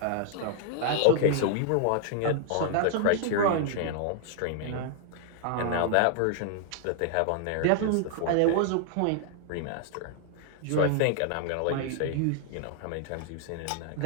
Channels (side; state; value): both; different; correlation -0.01